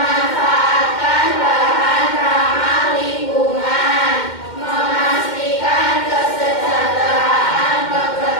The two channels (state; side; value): late; right; 2.1 ms